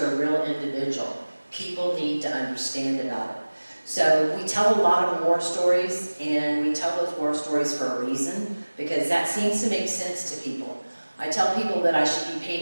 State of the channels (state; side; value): inverted; both; correlation -1.00